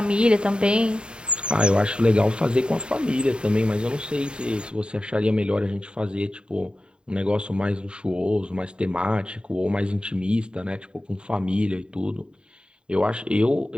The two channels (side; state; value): left; late; 0.051 ms